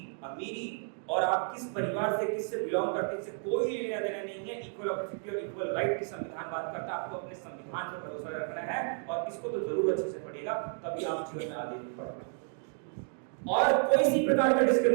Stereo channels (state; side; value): silent; left; 57 dB below the other